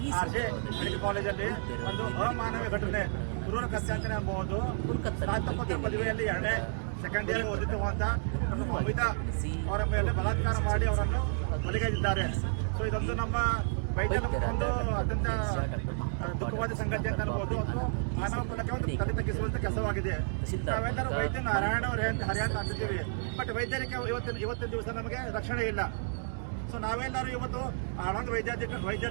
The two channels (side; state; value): left; silent; digital silence